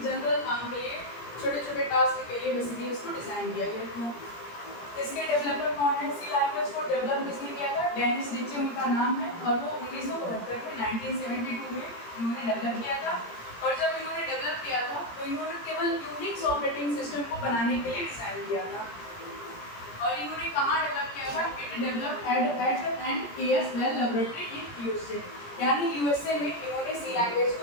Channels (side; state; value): right; late; 17 ms